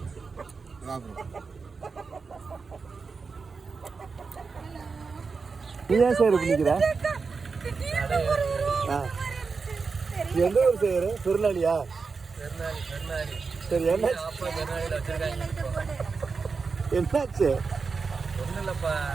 நீ ஏன் சார் பண்ணிக்கிற? எந்த ஊர் செய்யற? திருநாளியா? சரி, என்ன என்னாச்சு? ஒன்றும் இல்லைப்பா,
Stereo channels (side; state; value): left; quieter; 4.8 dB